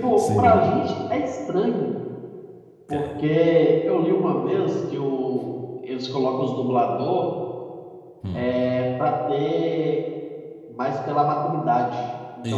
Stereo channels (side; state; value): both; identical; correlation 1.00